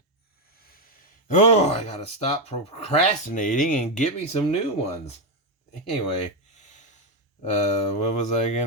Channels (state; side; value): normal; both; correlation 0.07